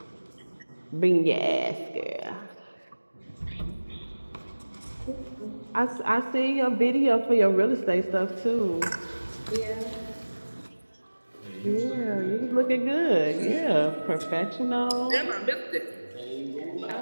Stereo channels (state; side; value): inverted; both; correlation -1.00